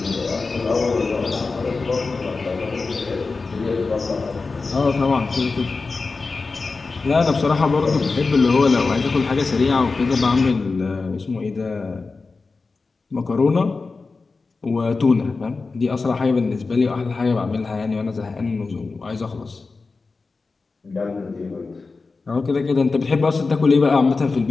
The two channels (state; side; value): quieter; right; 4.1 dB